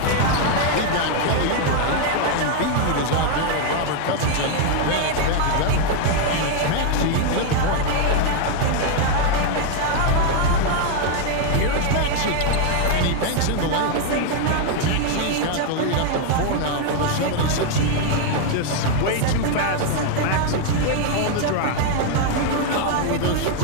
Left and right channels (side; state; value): both; different; correlation 0.00